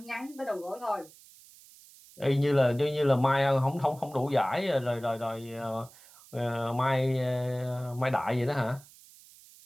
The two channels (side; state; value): right; noise; hiss, 23 dB below the sound